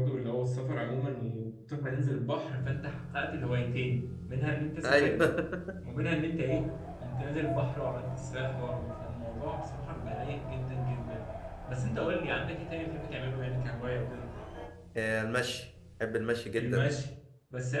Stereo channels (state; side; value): identical; both; correlation 1.00